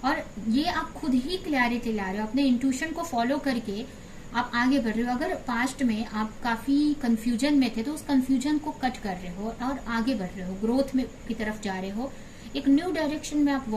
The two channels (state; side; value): identical; both; correlation 1.00